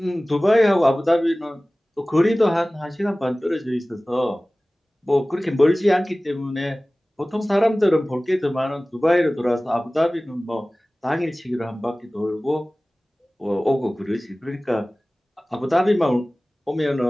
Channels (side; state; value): both; normal; correlation 0.98